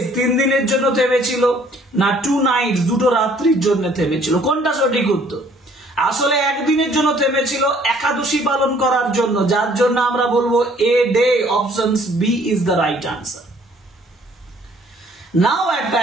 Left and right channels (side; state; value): both; normal; correlation 0.59